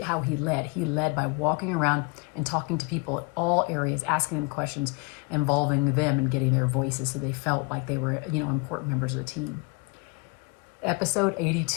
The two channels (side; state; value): right; quieter; 29.7 dB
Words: how he led. He led by walking around and talking to people at all areas, asking them questions, involving them and getting their voices so they felt like they were, important members of the team. Episode